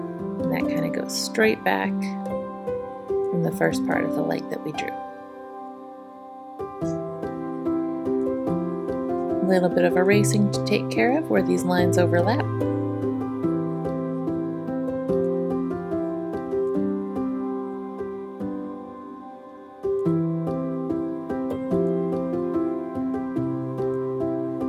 And that kind of goes straight back from the first part of the leg that we drew. A little bit of erasing to take care of where these lines overlap.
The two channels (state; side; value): identical; both; correlation 1.00